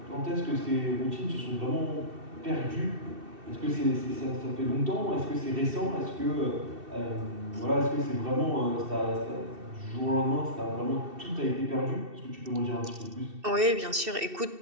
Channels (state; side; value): late; left; 2.7 ms